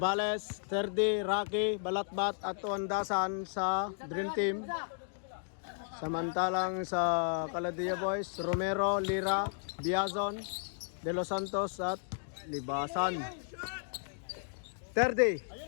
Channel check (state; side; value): silent; right; digital silence